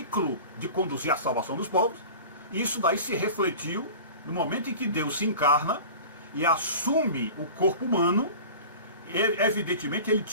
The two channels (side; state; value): both; inverted; correlation -0.38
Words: de conduzir a salvação dos povos, isso daí se refletiu no momento em que Deus se encarna e assume o corpo humano. Evidentemente, ele